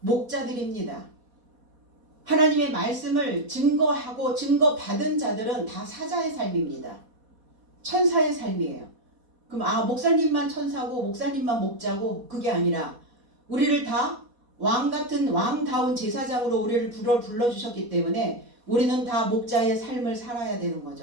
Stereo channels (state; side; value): late; left; 4.2 ms